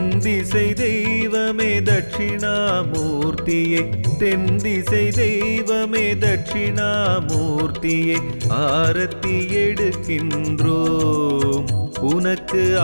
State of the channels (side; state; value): both; inverted; correlation -1.00